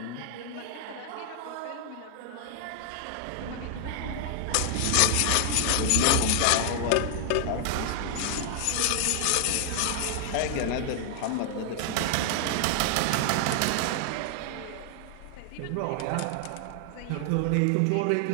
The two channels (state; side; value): different; both; correlation 0.00